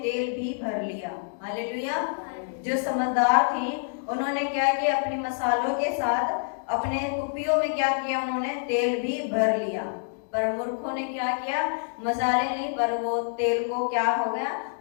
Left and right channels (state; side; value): silent; right; digital silence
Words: तेल भी भर लिया। हालेलुया। जो समझदार थी उन्होंने क्या किया? अपने मसालों के साथ अपने कुप्पियों में क्या किया? उन्होंने तेल भी भर लिया। पर मूर्खों ने क्या किया? मसाले ली पर वो तेल को क्या हो गया?